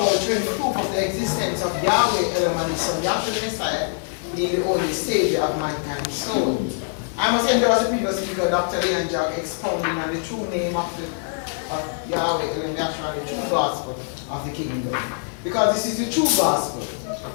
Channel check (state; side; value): silent; right; 63 dB below the other